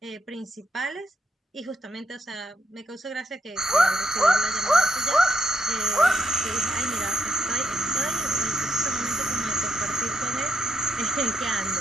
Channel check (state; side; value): normal; both; correlation 0.79